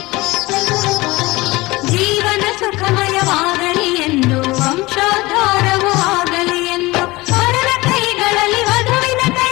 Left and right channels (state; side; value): quieter; right; 21.4 dB